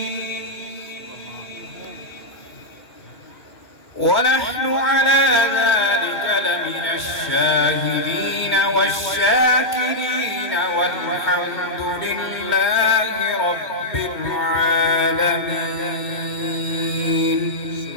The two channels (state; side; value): late; right; 2.1 ms